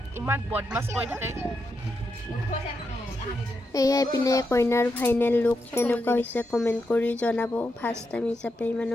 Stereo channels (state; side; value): normal; both; correlation 0.84